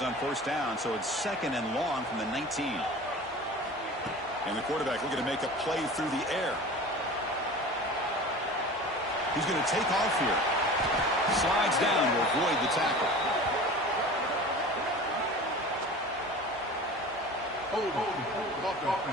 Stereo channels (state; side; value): normal; both; correlation 0.38